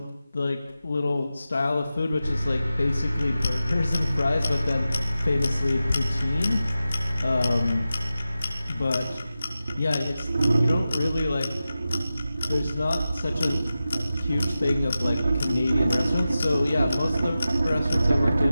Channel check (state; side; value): inverted; both; correlation -0.93